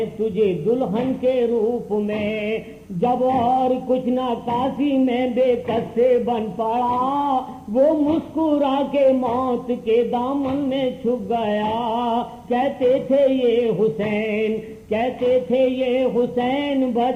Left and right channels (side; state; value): both; identical; correlation 1.00